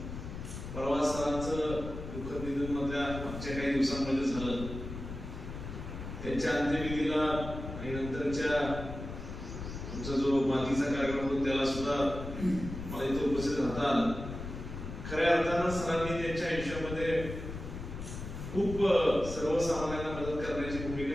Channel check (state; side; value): noise; left; rumble, 8 dB below the sound